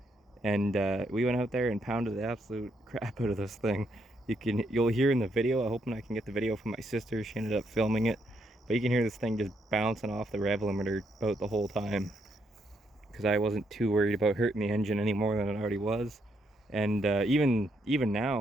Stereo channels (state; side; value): normal; both; correlation 0.76